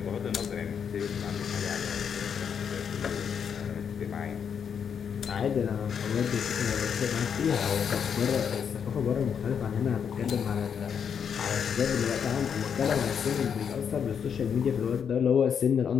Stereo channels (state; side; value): quieter; right; 7.4 dB